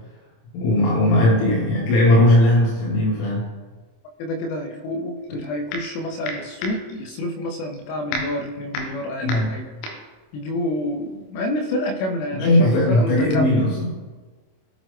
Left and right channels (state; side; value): late; right; 27 ms